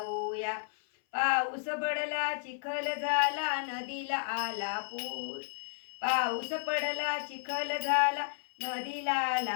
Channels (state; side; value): silent; right; 56 dB below the other